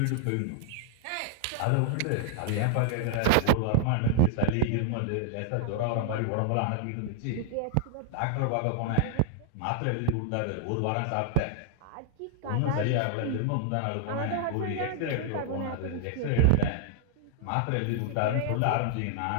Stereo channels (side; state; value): both; different; correlation 0.00